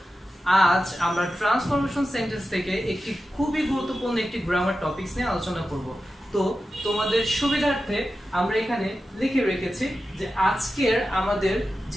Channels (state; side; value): normal; both; correlation 0.92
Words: আজ আমরা ট্রান্সফরমেশন সেন্টেন্স থেকে একটি খুবই গুরুত্বপূর্ণ একটি গ্রামার টপিকস নিয়ে আলোচনা করব। তো তোমাদের সুবিধার্থে আমরা এখানে লিখে রেখেছি যে আজকের আমাদের